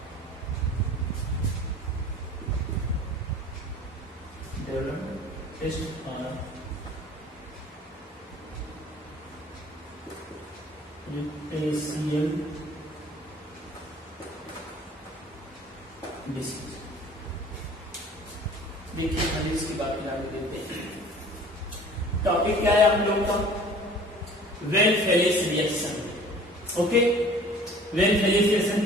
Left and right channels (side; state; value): both; normal; correlation 0.47